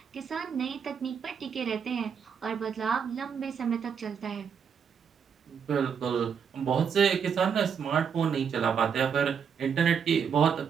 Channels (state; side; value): quieter; left; 7.0 dB